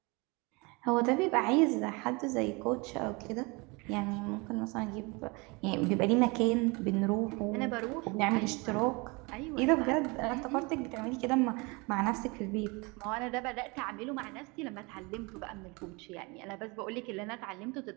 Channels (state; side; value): quieter; left; 27.3 dB